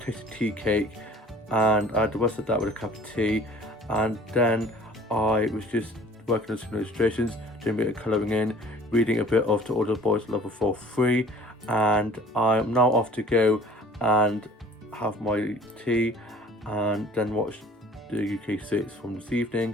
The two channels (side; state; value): both; normal; correlation 0.49